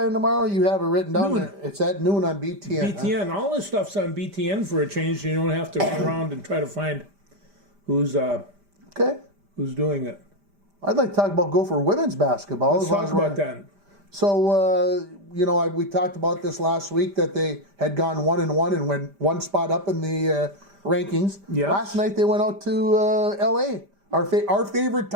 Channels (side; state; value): left; late; 5.0 ms